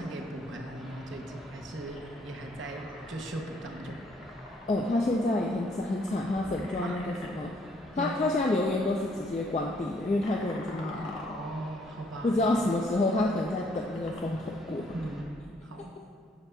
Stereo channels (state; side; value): normal; both; correlation 0.67